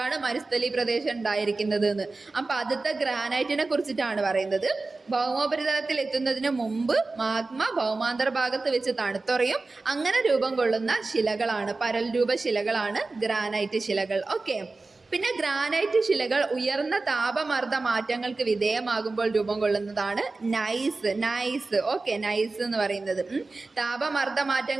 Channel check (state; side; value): quieter; left; 3.5 dB